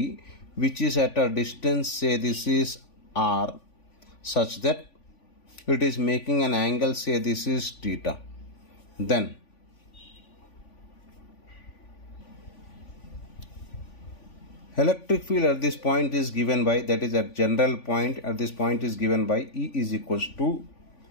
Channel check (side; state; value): right; late; 3.5 ms